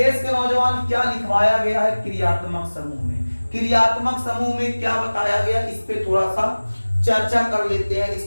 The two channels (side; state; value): both; inverted; correlation -1.00